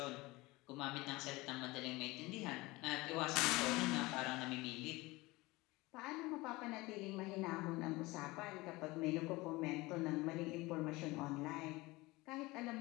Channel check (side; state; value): right; quieter; 21.7 dB